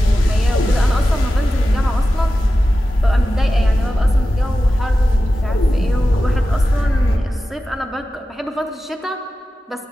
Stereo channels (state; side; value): normal; both; correlation 0.93